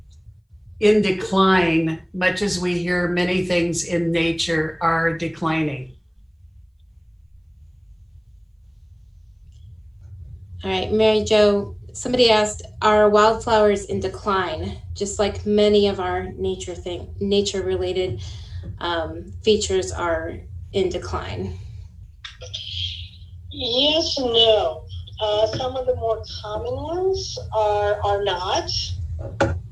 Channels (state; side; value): identical; both; correlation 1.00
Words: in decline, much as we hear many things in nature are declining? All right, Mary Jo, somebody asked, are wildflowers in decline, just like many of our nature-related features are in decline? Yes and no. Some of the more common ones are not, but